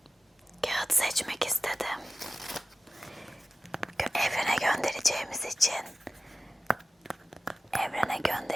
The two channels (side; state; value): both; normal; correlation 0.97